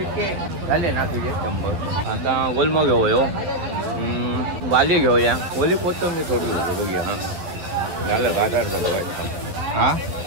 कितके झाले ना तुझे 100. आता गोलमो घेऊया वाली घेऊया ओली कोथंबीर थोडी बघूया. हा झालं बाजार झालं हा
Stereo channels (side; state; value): left; late; 12 ms